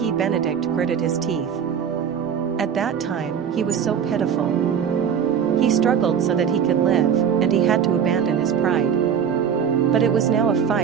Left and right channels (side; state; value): left; quieter; 7.8 dB